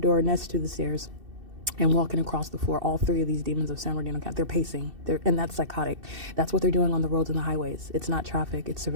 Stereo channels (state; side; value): late; left; 2.7 ms